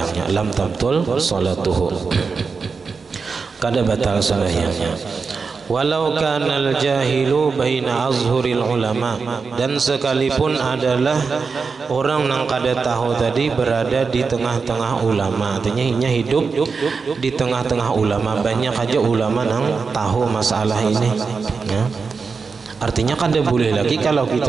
Lam tabtul salatuhu, kada batal sembahyangnya. Walau kanal jahilu baina azhuril ulama, dan sekalipun adalah orang yang kada tahu tadi berada di tengah-tengah ulama, artinya inya hidup di tengah-tengah ulama, banyak aja ulama yang tahu masalah ini, ya. Artinya kada boleh lagi kalau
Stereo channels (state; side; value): quieter; left; 4.9 dB